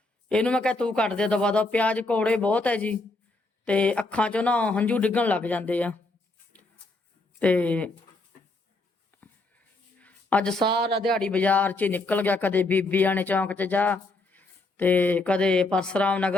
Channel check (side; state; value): right; quieter; 3.0 dB